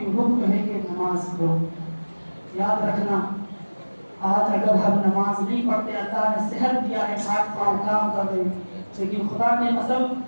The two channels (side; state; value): both; inverted; correlation -1.00